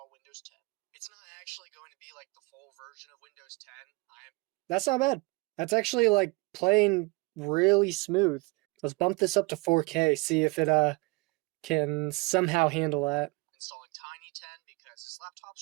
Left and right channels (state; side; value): quieter; left; 26.0 dB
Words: Windows 10. It's not actually going to be like the full version of Windows 10. That's not bad. That's actually like playing really smooth. Let's bump this up to 4K, see if it can somehow handle that. Installing Tiny 10 because this